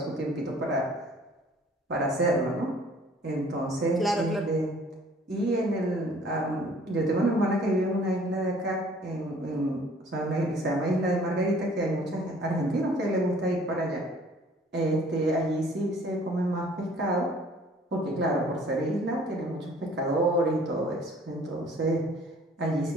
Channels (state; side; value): normal; both; correlation 0.54